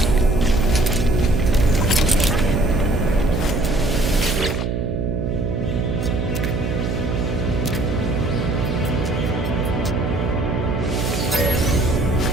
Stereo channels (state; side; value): noise; right; hum, 1 dB below the sound